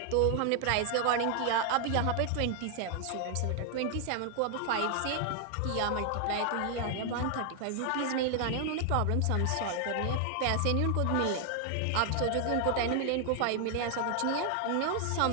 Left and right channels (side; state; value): both; different; correlation 0.00